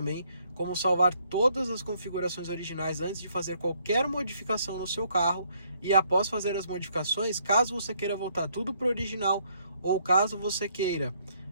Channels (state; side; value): inverted; both; correlation -0.69